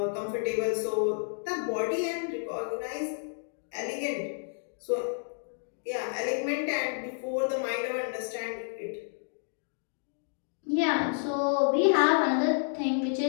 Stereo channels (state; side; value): silent; right; digital silence